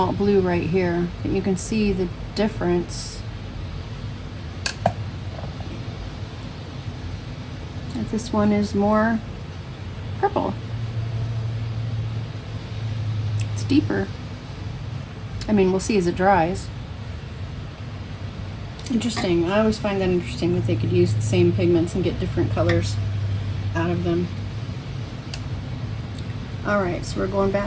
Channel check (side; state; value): both; identical; correlation 1.00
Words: blue right here. But you can see the difference. That this one is more purple. It's deeper. I mean, we'll see as it dries. Interesting. I always find that interesting that they could use the same pigments and get different colors out of them. All right, so we're going